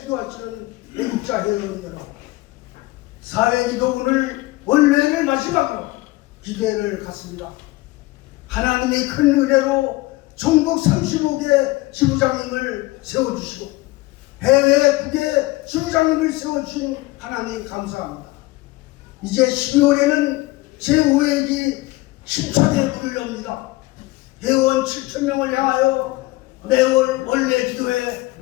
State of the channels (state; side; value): quieter; right; 20.3 dB